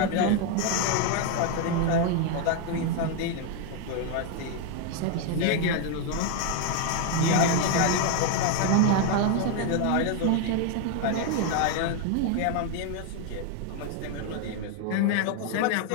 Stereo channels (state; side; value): different; both; correlation 0.01